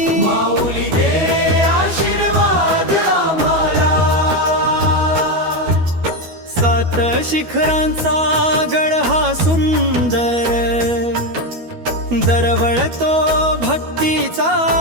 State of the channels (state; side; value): late; left; 12 ms